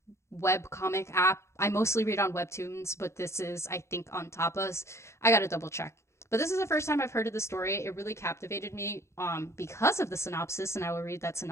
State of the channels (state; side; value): late; right; 0.13 ms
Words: web comic app. I mostly read on Webtoons, but this is, I think, on Tapas. I gotta double check. But this is the first time I've heard of the story. It really captivated me because of the synopsis, and I will read that